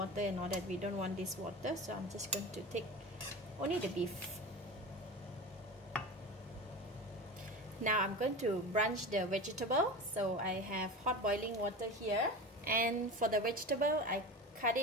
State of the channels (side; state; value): both; normal; correlation 0.30